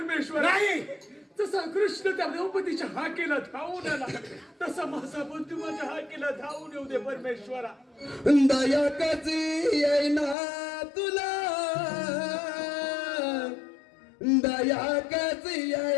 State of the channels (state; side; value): drops out; right; at 10.4 s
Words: नाही. जसा कृष्ण त्या द्रौपदीच्या हाकेला धावून आला तसा माझा बंधू माझ्या हाकेला धावून येऊ दे परमेश्वरा. दया कशी येईना तुला दया कशी